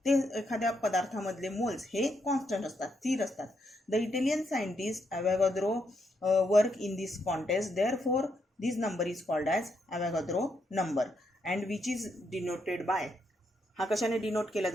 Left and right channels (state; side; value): normal; both; correlation 0.78